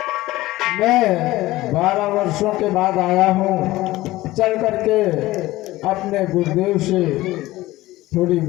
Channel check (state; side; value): quieter; right; 17.7 dB